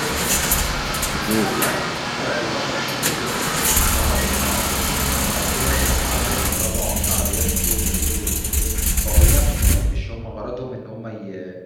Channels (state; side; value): identical; both; correlation 1.00